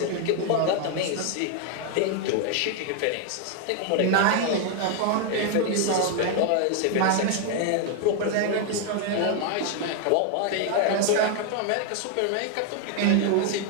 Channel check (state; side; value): different; both; correlation 0.00